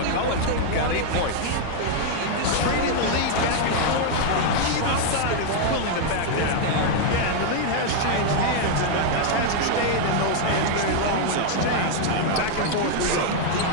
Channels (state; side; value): different; both; correlation 0.00